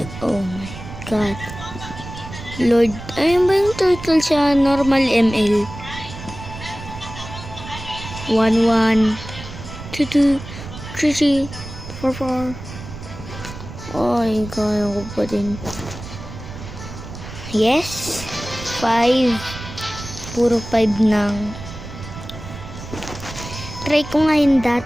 Oh my god. Lord, ayun ba yung turtle siya? Normal ML. 1, 1, 2, 2, 3, 3, 4, 4. Ay, kaya ko pa din. Yes. 5. Puro 5 nang. Try ko nga yung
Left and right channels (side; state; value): right; noise; rumble, 12 dB below the sound